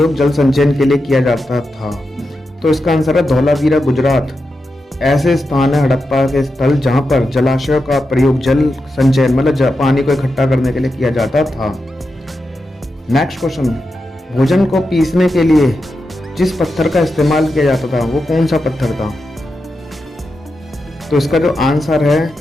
जल संचयन के लिए किया जाता था? तो इसका आंसर है धौलावीरा, गुजरात। ऐसे स्थान है हड़प्पा के स्थल जहाँ पर जलाशयों का प्रयोग जल संचयन मतलब पानी को इकट्ठा करने के लिए किया जाता था। नेक्स्ट क्वेश्चन, भोजन को पीसने के लिए जिस पत्थर का इस्तेमाल किया जाता था वो कौन सा पत्थर था? तो इसका जो आंसर है,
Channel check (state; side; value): normal; both; correlation 0.88